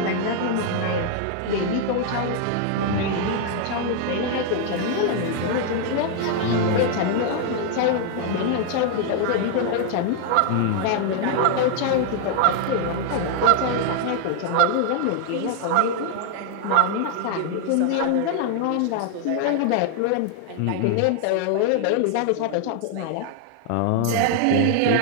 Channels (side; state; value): both; different; correlation 0.00